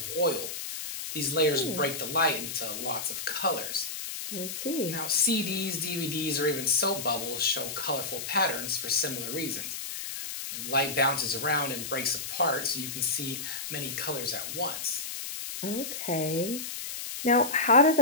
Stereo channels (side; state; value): left; noise; hiss, 6 dB below the sound